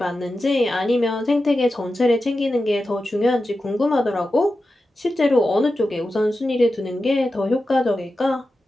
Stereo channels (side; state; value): both; normal; correlation 0.92